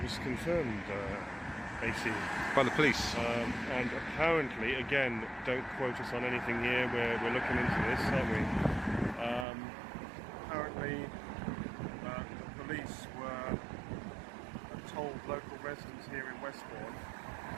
was confirmed, AC. By the police. And apparently, again, don't quote us on anything here, we're looking into this, aren't we? Apparently, the police told local residents here in Westbourne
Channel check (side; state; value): left; drops out; at 9.5 s